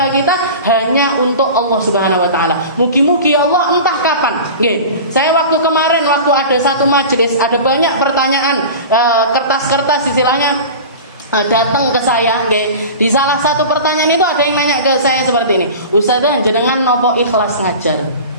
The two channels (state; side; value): inverted; both; correlation -0.34